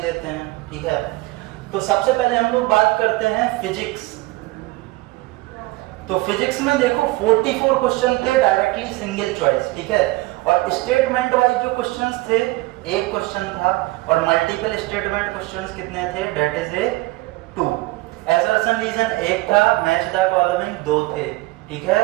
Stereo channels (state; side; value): quieter; left; 20.9 dB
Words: लेते हैं। ठीक है, तो सबसे पहले हम लोग बात करते हैं फिजिक्स। तो फिजिक्स में देखो 44 क्वेश्चन थे डायरेक्टली सिंगल चॉइस। ठीक है, और स्टेटमेंट वाइज जो क्वेश्चंस थे, एक क्वेश्चन था और मल्टीपल स्टेटमेंट क्वेश्चंस कितने थे, that is a 2। Assertion reason एक था, मैच द फॉलोइंग 2 थे। ठीक है,